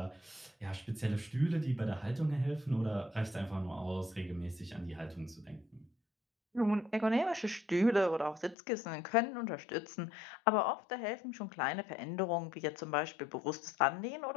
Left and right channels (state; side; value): drops out; right; at 8.6 s